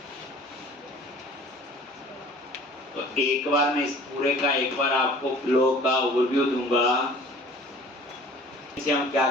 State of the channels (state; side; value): normal; both; correlation 0.48